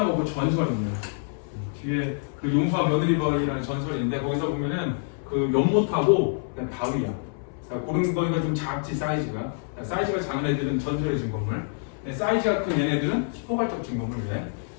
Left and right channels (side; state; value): right; silent; 61 dB below the other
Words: 없고 전설이 있네. 뒤에 그 용수와 며느리벌이라는 전설이 있는데 거기서 보면은 그 연못하고 그냥 바위야. 그러니까 그런 거니까 좀 작지 사이즈가. 사이즈가 작은 애들은 전설의 증거물. 사이즈가 큰 얘네들은 포괄적 증거물을 해.